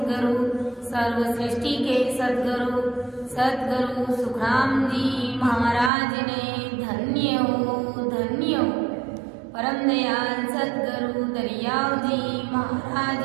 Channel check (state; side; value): drops out; left; at 5.9 s